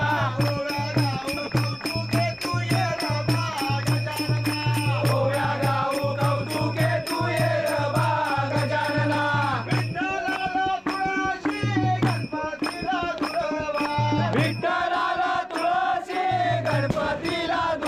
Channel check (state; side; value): identical; both; correlation 1.00